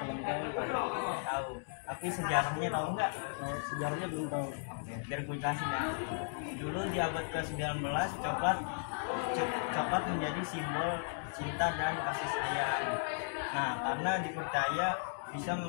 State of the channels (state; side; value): silent; right; digital silence